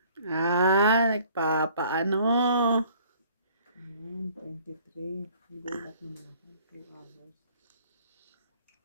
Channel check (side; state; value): both; inverted; correlation -0.56